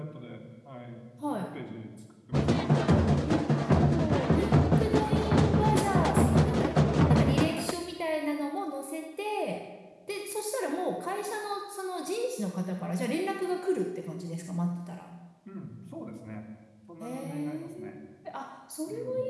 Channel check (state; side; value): identical; both; correlation 1.00